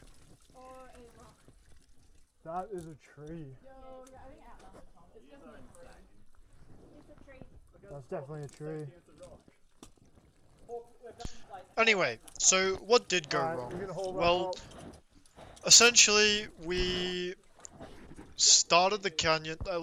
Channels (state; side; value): identical; both; correlation 1.00